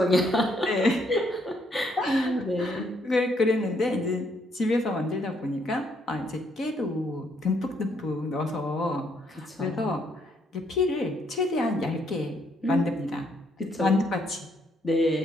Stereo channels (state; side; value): normal; both; correlation 0.71